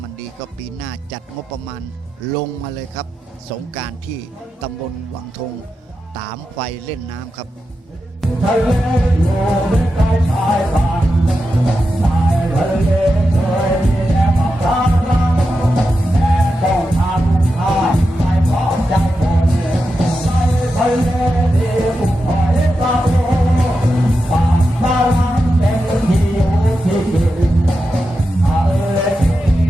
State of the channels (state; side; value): normal; both; correlation 0.89